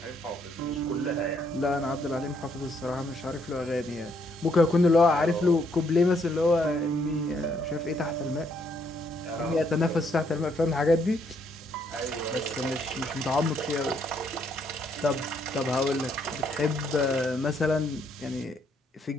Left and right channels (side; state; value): both; normal; correlation 0.71